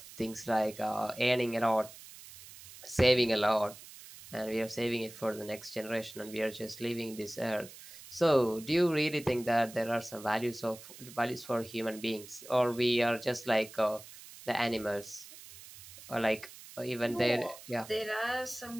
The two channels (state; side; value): noise; right; hiss, 17 dB below the sound